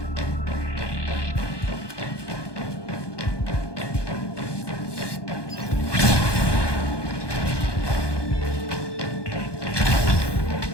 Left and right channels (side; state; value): right; late; 1.2 ms